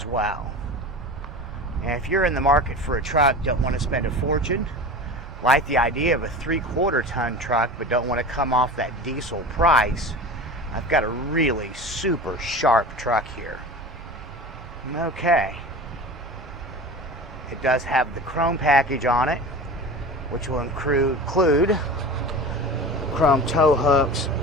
well. And if you're in the market for a truck, don't want to spend a fortune, like the idea of a 3/4 ton truck, but don't want to come off that diesel price, I've got a really super sharp truck here. Okay. It does have the chrome package on it, which will include chrome tow hooks,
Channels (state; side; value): normal; both; correlation 0.33